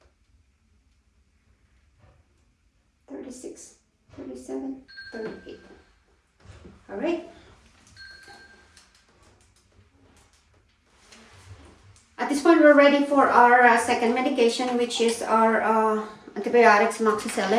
36, 37, 38. All right. At this point, we're ready for our second medication, which is our antibiotics,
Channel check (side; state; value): both; identical; correlation 1.00